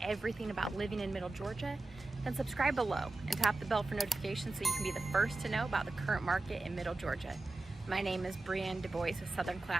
about living in Middle Georgia, then subscribe below and tap the bell for notifications so you can be the first to know about the current market in Middle Georgia. My name is Brienne Du Bois with Southern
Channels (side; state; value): left; quieter; 3.1 dB